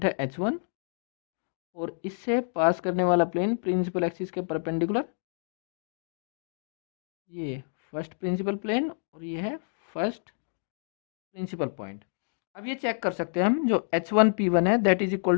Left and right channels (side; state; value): right; silent; digital silence